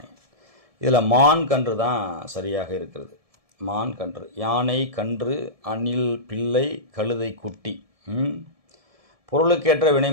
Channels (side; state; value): left; late; 1.7 ms